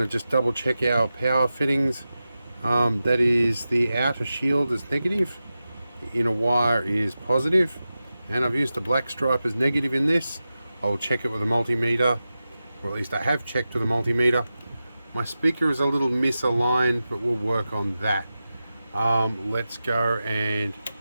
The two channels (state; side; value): inverted; both; correlation -0.93